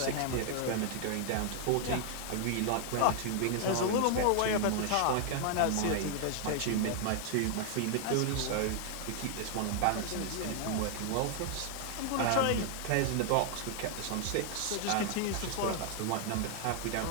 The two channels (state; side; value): different; both; correlation 0.00